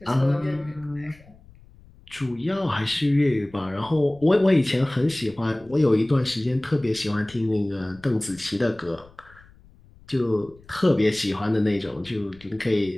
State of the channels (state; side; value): noise; left; rumble, 26 dB below the sound